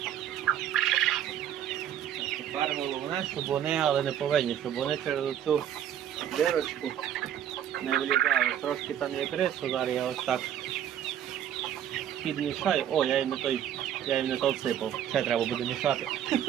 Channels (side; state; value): left; quieter; 10.1 dB